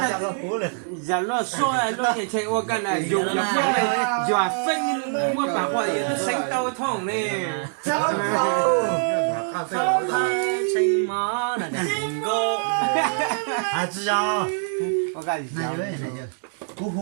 giờ nó xoay nó thì chạy qua cái này dùng là phân này dọa phân mua bảo quả nó xanh tao thòng này phong hơi chanh má là đừng có à chứ sao có cái gì này vậy này cú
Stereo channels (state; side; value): silent; left; 63 dB below the other